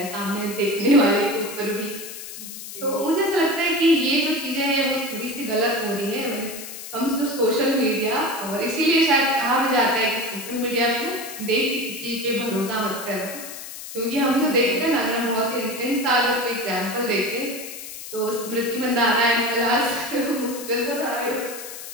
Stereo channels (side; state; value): left; noise; hiss, 11 dB below the sound